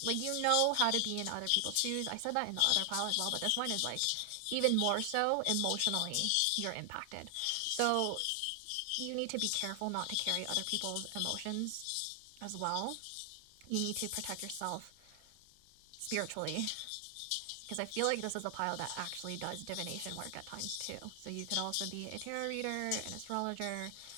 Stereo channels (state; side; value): different; both; correlation 0.00